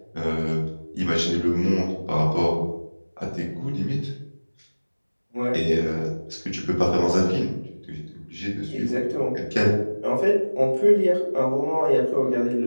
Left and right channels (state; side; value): inverted; both; correlation -1.00